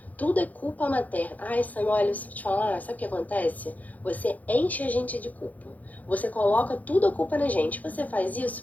tudo é culpa materna. Sam, olha, se eu te falar, sabe o que acontece? Você enche a gente de culpa. Você coloca tudo a culpa na gente. Você faz isso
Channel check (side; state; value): right; late; 0.078 ms